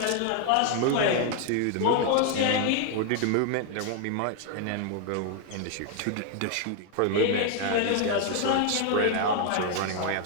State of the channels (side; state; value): both; different; correlation 0.00